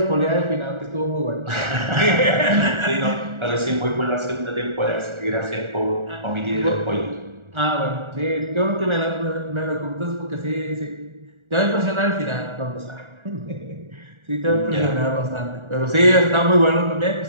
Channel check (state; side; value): late; left; 1.4 ms